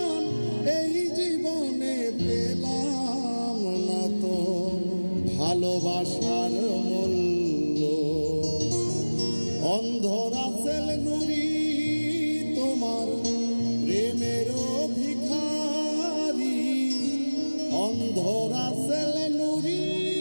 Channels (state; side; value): inverted; both; correlation -1.00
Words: এই জীবনে পেলাম না তো ভালোবাসার মূল্য। অন্ধরা সেল নুরি তোমার প্রেমের ভিখারি, অন্ধরা সেল নুরি